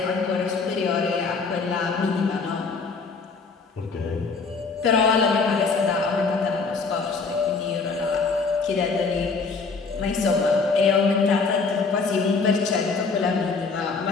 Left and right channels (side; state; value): right; quieter; 4.6 dB